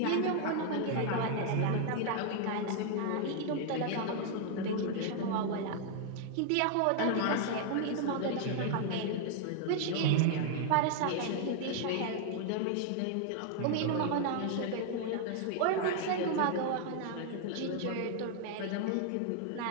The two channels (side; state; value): both; different; correlation 0.00